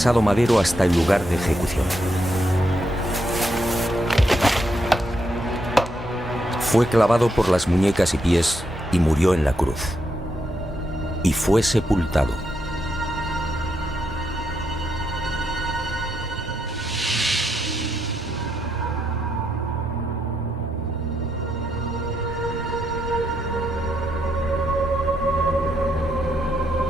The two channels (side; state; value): both; normal; correlation 0.80